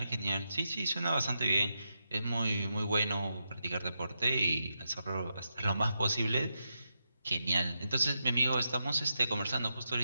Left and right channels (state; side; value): inverted; both; correlation -0.85